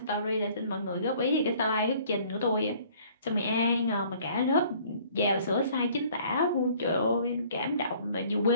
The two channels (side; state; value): both; inverted; correlation -0.55